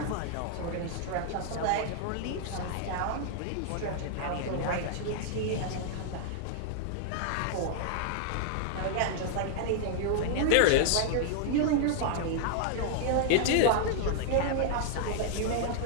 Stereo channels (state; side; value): different; both; correlation -0.01